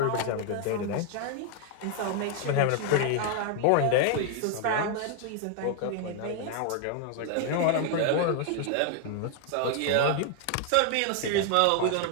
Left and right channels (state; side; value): different; both; correlation 0.00